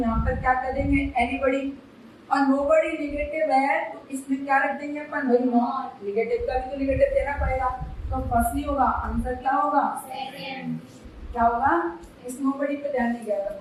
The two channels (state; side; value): identical; both; correlation 1.00